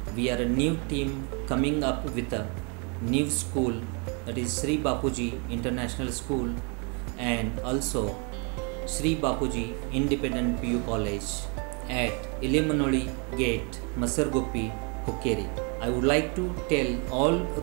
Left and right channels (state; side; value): quieter; left; 35.0 dB